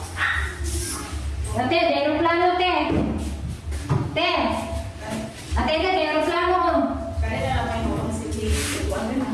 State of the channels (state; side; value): identical; both; correlation 1.00